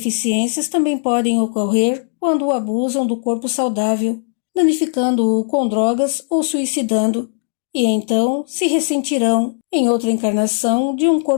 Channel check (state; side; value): silent; right; digital silence